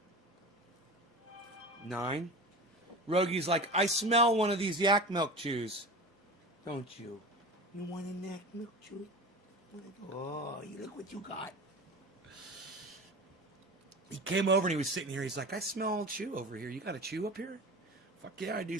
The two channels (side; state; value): both; normal; correlation 0.32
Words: 9. Rogi's like, I smell one of these yak milk chews. Don't you? You want a yak milk chew? Oh, you look what you got. He came over and he was sitting here. He's like, I smell chew over here. You got a chew up here? Fuck yeah, I